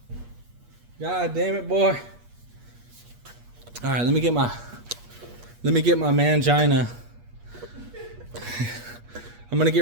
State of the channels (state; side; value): late; left; 8.4 ms